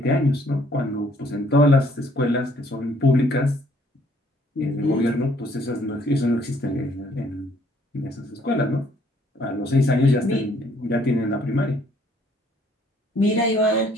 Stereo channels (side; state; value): both; normal; correlation 0.63